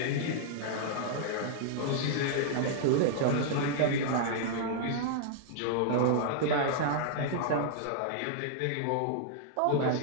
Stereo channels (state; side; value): different; both; correlation -0.01